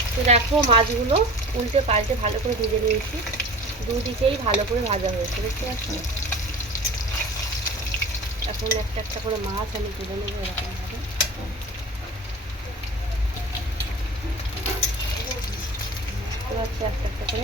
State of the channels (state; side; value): normal; both; correlation 0.37